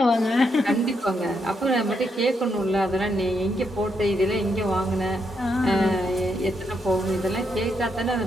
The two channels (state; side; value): normal; both; correlation 0.79